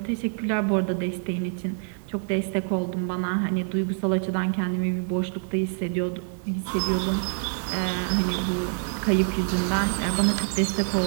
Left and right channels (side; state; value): left; silent; 61 dB below the other